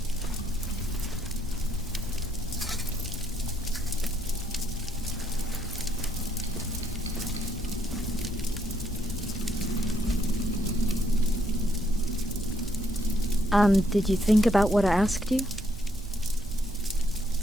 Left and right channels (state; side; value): normal; both; correlation 0.73